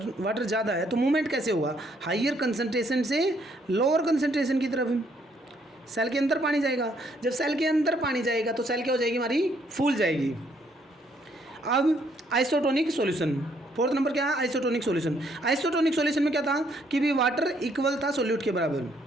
वाटर ज़्यादा है तो मूवमेंट कैसे होगा? हाइयर कंसंट्रेशन से लोअर कंसंट्रेशन की तरफ। सेल के अंदर पानी जाएगा, जब सेल के अंदर पानी जाएगा तो सेल क्या हो जाएगी? हमारी फूल जाएगी। अब आइसोटोनिक सॉल्यूशन, फोर्थ नंबर क्या है? Isotonic solution. आइसोटोनिक सॉल्यूशन में क्या था कि भी वाटर इक्वल था सोल्यूट के बराबर।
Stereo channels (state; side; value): normal; both; correlation 0.69